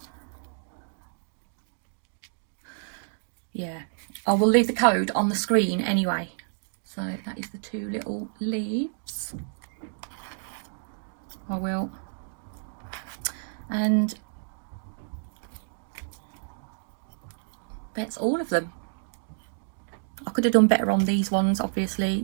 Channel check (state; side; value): silent; left; digital silence